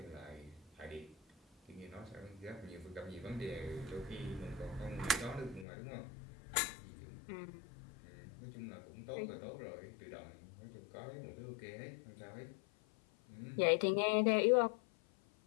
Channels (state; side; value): drops out; right; at 5.7 s